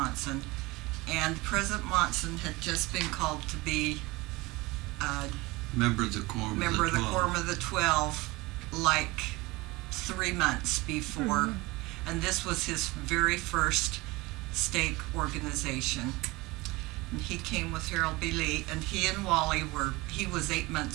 And President Monson had just been called to be Member of the Quorum member of the 12. Quorum of the 12 like 3 months before. And this was his very first stake organization. And he came with Harold B. Lee, and he and Wally he was 8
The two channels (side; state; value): left; quieter; 22.3 dB